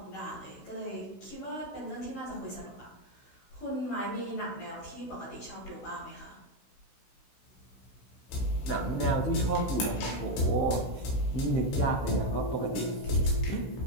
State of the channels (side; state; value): right; late; 16 ms